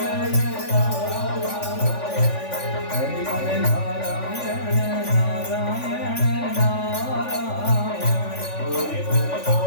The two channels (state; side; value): late; right; 3.5 ms